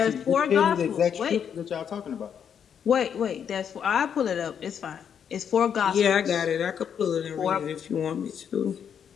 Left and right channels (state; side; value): quieter; right; 8.0 dB